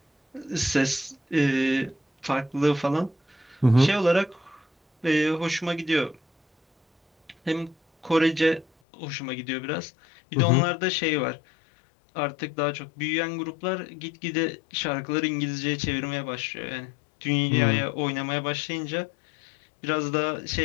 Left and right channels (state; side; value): drops out; right; at 8.7 s